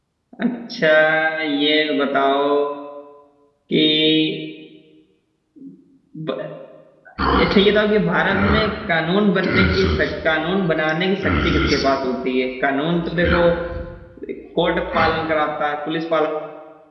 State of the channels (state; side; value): identical; both; correlation 1.00